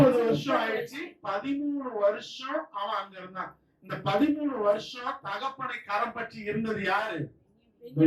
வருஷம் ஆயிடுச்சு. 13 வருஷம் அவன் அங்க இருந்தான். இந்த 13 வருஷம் தகப்பனை கரம் பற்றி இருந்தது யாரு?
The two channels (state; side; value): identical; both; correlation 1.00